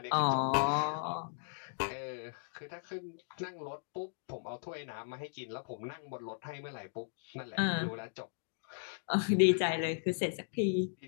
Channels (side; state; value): right; silent; digital silence